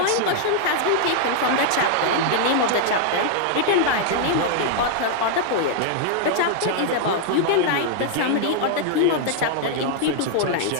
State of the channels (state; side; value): different; both; correlation -0.01